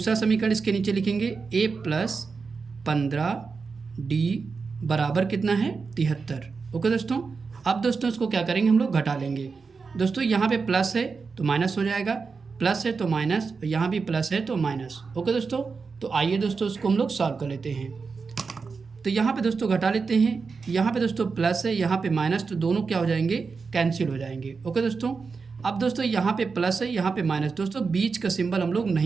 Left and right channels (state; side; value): quieter; left; 4.9 dB